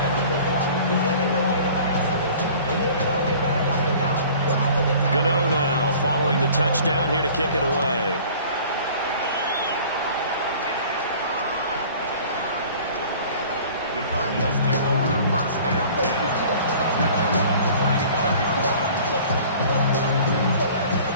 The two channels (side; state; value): both; inverted; correlation -0.47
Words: Gano now following the touchdown here to kick it away. The Cardinals take over 1st and 10 at their own 35-yard line.